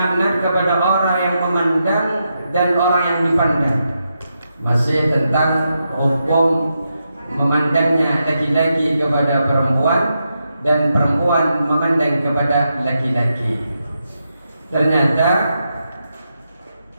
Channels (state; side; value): inverted; both; correlation -0.85